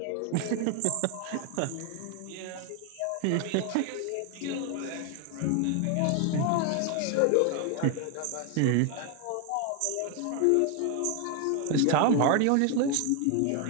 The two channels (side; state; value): both; different; correlation 0.01